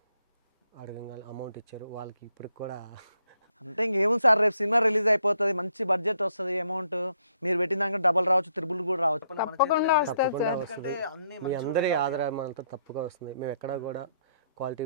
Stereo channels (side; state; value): both; inverted; correlation -0.72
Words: అడగంగా అమౌంట్ ఇచ్చారు. వాళ్ళకి ఇప్పటికి కూడా అంటే ఇంకేముంది సార్, రేపు సినిమా రిలీజ్ అయిపోతుంది, మంచి బడ్జెట్ వస్తుంది, అమౌంట్ మీరు పెట్టిన దానికి డబల్ రావచ్చు, త్రిబుల్ కూడా రావచ్చు. తప్పకుండా వస్తుంది తప్పకుండా సార్. ఎందుకంటే వస్తుంది. అన్ని మీ అందరి ఆదరణ అంతా తప్పుగా వస్తుంది. మేము ఎక్కడ కూడా క్వాలిటీ